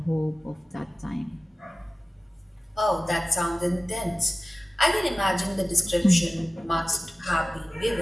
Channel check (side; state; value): both; normal; correlation 0.96